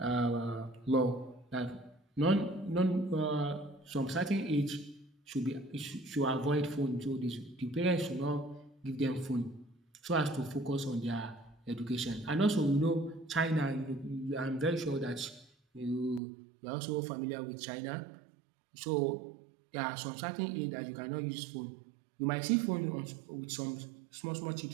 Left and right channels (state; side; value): drops out; left; at 16.2 s